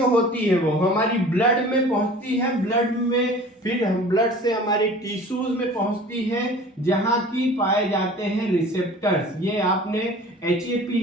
होती है वो हमारी ब्लड में पहुंचती है, ब्लड में फिर हम ब्लड से हमारे टिश्यूज में पहुंचती है जहां की पाए जाते हैं रिसेप्टर्स। ये आपने HAP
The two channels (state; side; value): normal; both; correlation 0.44